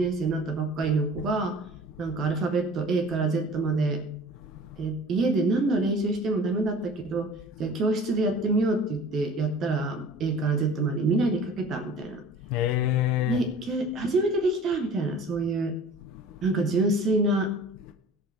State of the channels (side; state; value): both; normal; correlation 0.44